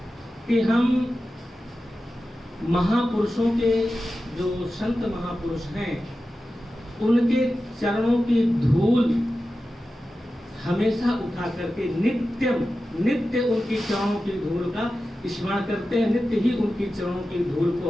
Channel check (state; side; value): normal; both; correlation 0.93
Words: कि हम महापुरुषों के, जो संत महापुरुष हैं, उनके चरणों की धूल हमेशा उठा करके नित्य उनकी चरणों की धूल का स्मरण करते हैं, नित्य ही उनकी चरणों की धूल